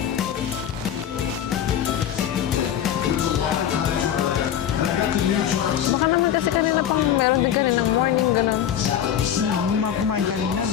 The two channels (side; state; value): right; quieter; 9.9 dB